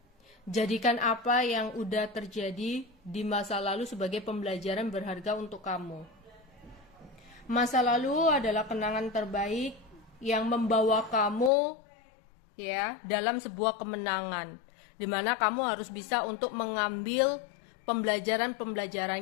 Jadikan apa yang udah terjadi di masa lalu sebagai pembelajaran berharga untuk kamu. Masa lalu adalah kenangan terbaik yang membawa kamu ya dalam sebuah kemenangan, di mana kamu harus bisa untuk mengambil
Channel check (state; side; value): drops out; right; at 11.5 s